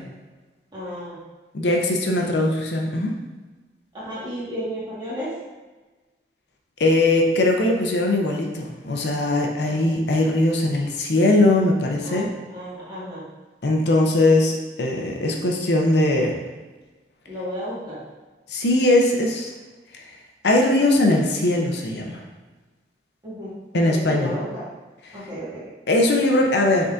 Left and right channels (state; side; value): normal; both; correlation 0.51